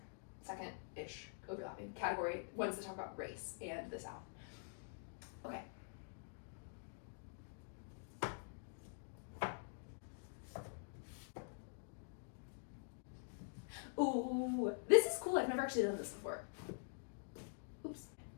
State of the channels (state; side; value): silent; right; digital silence